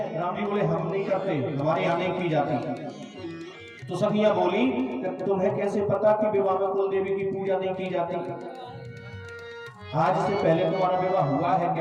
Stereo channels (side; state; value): both; identical; correlation 1.00